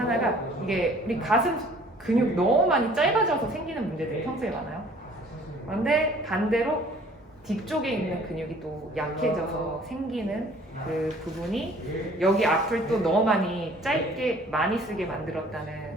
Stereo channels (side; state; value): both; normal; correlation 0.54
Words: 이게 우리 가슴 근육 너무 많이 짧아져서 생기는 문제들이 평소에 많아요. 그런데 반대로 뒤쪽에 있는 근육이 또 약해져서 생기는 그 부분이 여기 앞을 또 너무 많이 짧게 많이 쓰게 만들었다는